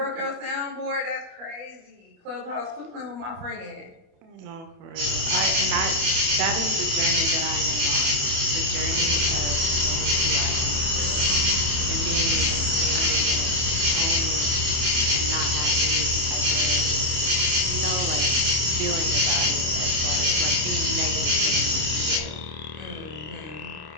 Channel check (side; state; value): left; late; 27 ms